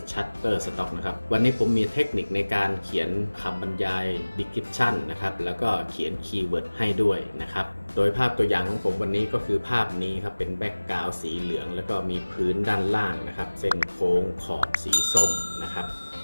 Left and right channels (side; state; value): both; inverted; correlation -1.00